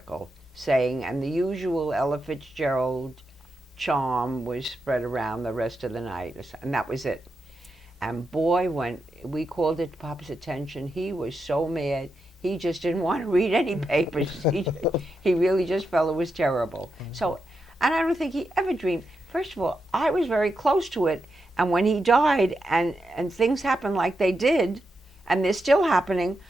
saying, and the usual Ella Fitzgerald charm was spread around the rest of the night, and that was it. And boy, when we called it to Papa's attention, he was so mad. He just didn't want to read any papers. He really just felt it was terrible. So, and I don't think he ever dreamed. First of all, I was very close to it, and when he died and things happened like they did, and they're still happening,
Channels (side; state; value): both; normal; correlation 0.86